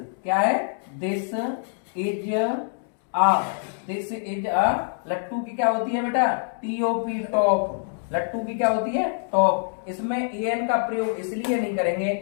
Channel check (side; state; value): right; silent; digital silence